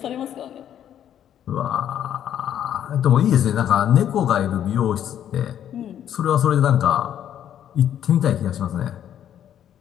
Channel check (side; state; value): right; quieter; 10.2 dB